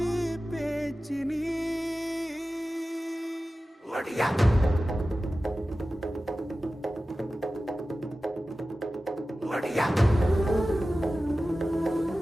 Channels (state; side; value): normal; both; correlation 0.95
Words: பேச்சினி ஒடியா ஒடியா